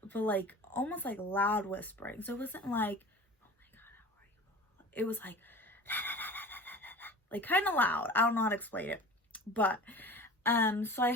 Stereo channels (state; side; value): normal; both; correlation 0.38